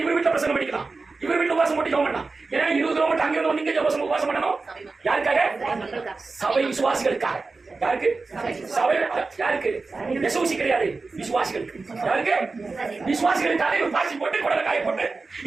இவர் வீட்டுல பிரசங்கம் பண்ணிக்கலாம், இவர் வீட்டுல உபாசம் போட்டு ஜெபம் பண்ணலாம். ஏன்னா 20 கிலோமீட்டர் அங்க இருந்து நீங்க உபாசம் பண்ணணும். யாருக்காக? சபை விசுவாசிகளுக்காக. யாருக்கு? சபை யாருக்கு? விசுவாசி கிடையாது, விசுவாசிகளுக்கு. யாருக்கு? விசுவாசிகளுக்காக இவர் பாசி போட்டு குடலை காய போட்டு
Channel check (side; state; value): left; quieter; 3.9 dB